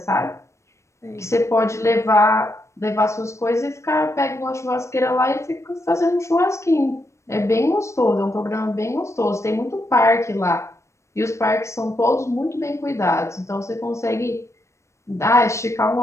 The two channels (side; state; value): right; late; 0.14 ms